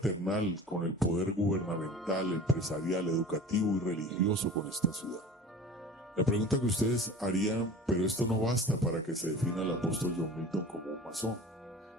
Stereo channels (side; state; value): both; normal; correlation 0.39